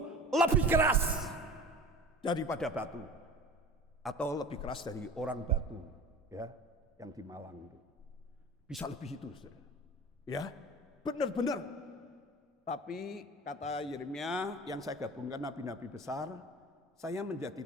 lebih keras daripada batu, atau lebih keras dari orang batu, ya, yang di Malang itu. Bisa lebih itu, saudara. Ya, benar-benar. Tapi kata Yeremia yang saya gabungkan nabi-nabi besar, saya menjadi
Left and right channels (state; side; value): normal; both; correlation 0.39